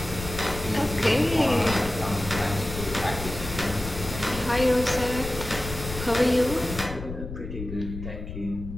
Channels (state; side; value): noise; left; rumble, 9 dB below the sound